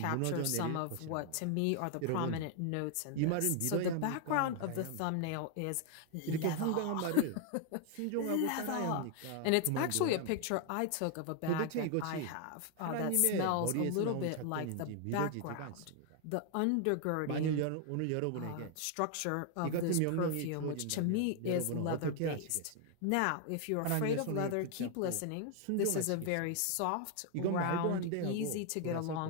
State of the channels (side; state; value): both; different; correlation 0.00